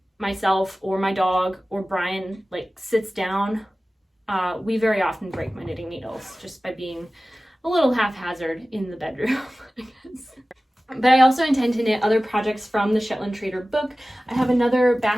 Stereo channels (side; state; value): both; normal; correlation 0.97